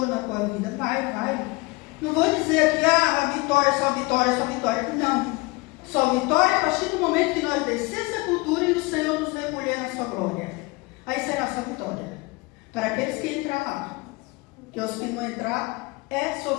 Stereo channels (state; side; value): quieter; right; 24.5 dB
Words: na tua vida, vai. Não vou dizer aqui, a vitória, só vitória, não. Só vitória a partir do momento que nós descer essa cultura e o Senhor nos recolher na sua glória. Aí será só vitória. Para aqueles que entrar lá. Que os que não entrar é